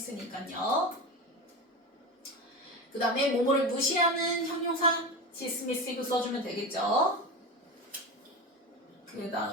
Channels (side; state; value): both; normal; correlation 0.23